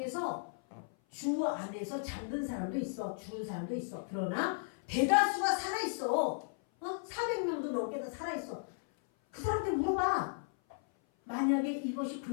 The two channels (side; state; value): right; silent; 54 dB below the other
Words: 주 안에서 잠든 사람도 있어. 죽은 사람도 있어. 그러나 대다수가 살아있어. 400명도 넘게 다 살아있어. 그 사람한테 물어봐. 만약에 이것이